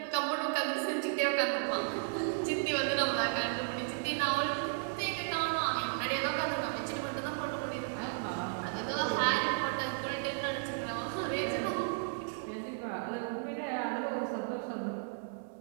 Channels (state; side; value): silent; left; 55 dB below the other